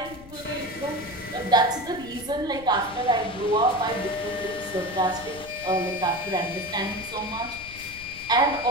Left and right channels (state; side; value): noise; left; rumble, 18 dB below the sound